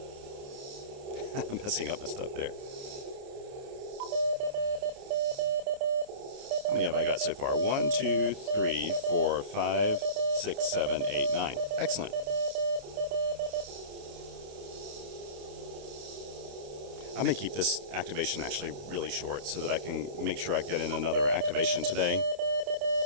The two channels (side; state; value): left; late; 29 ms